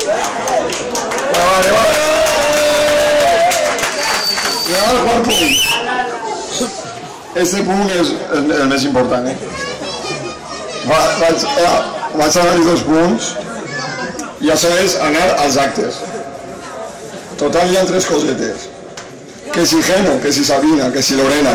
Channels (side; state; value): both; identical; correlation 1.00